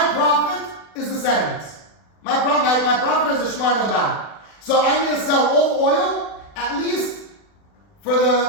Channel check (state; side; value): late; right; 40 ms